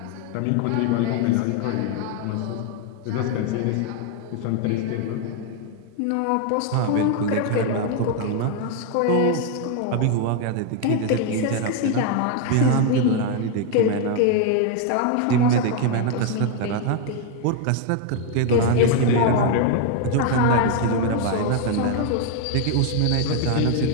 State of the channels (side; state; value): both; different; correlation 0.00